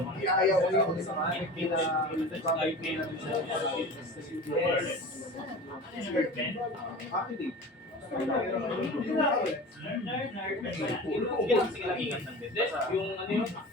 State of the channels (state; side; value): normal; both; correlation 0.35